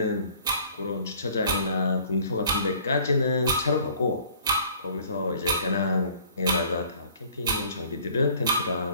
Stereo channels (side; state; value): both; inverted; correlation -0.54